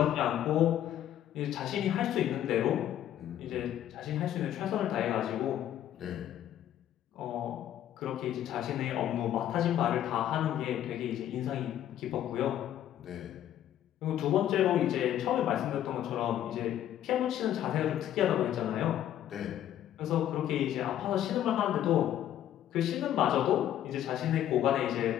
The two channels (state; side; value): quieter; right; 11.5 dB